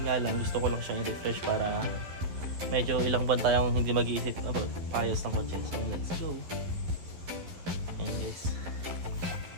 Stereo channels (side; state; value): left; late; 11 ms